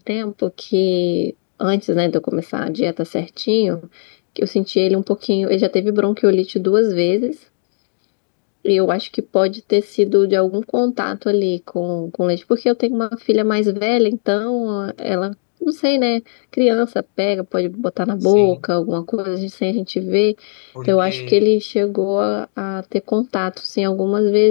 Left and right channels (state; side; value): silent; right; digital silence